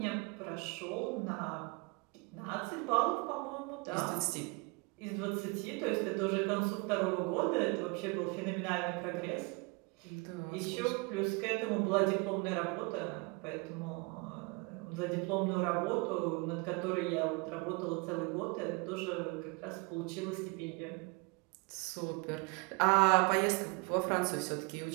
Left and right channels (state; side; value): quieter; left; 28.9 dB